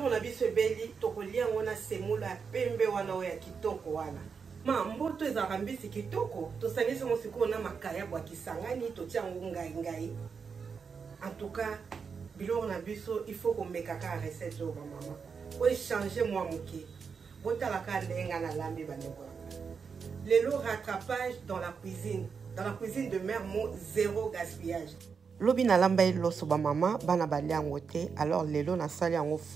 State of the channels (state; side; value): quieter; left; 5.8 dB